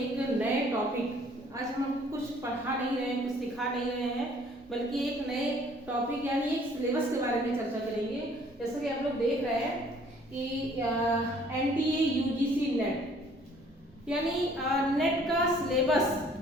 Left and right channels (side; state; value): both; normal; correlation 0.58